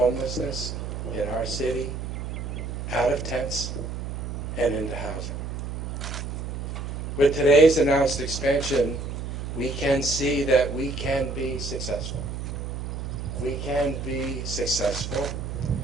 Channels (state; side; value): noise; right; hum, 5 dB below the sound